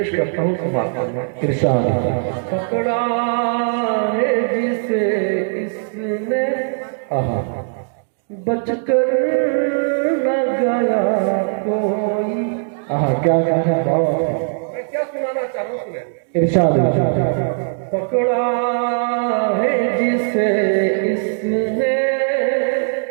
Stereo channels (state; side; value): silent; left; digital silence